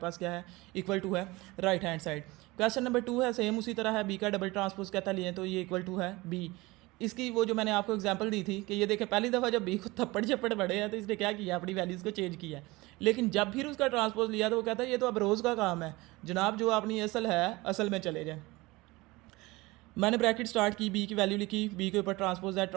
क्या है, इक्वल टू है right hand side. Question number 2 है सेम उसी तरह है, बी का डबल ट्रांसपोज कहता लिए तो ये इक्वल टू है बी। इसकी वो जो मैंने आपको एग्जांपल दी थी कि ये देखें पहली दफ़ा जब बी को थप्पड़ झप्पड़ पड़े हैं तो इसने क्या किया, अपनी वैल्यूज़ को चेंज किया है। लेकिन जब फिर उसका ट्रांसपोज लिया तो वो कहता है ये तो अब रोज़ का काम है जनाब, जो अपनी असल है असल में चले जाए। मैंने ब्रैकेट स्टार्ट की, बी की वैल्यू लिखी, बी के ऊपर ट्रांसपोज है,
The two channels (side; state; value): left; quieter; 21.7 dB